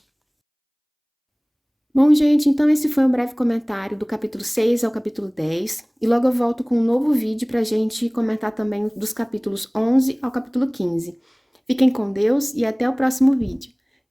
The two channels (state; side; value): identical; both; correlation 1.00